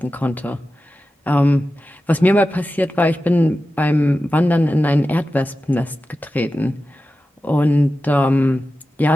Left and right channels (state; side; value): normal; both; correlation 0.93